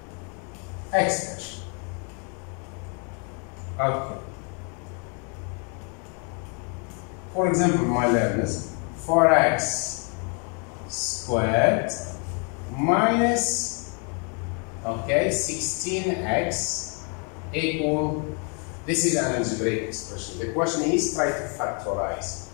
expression. Okay. For example, my learners, 4x squared minus 16x equal, this is an algebraic expression. The question is try to factorize.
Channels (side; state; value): right; quieter; 38.2 dB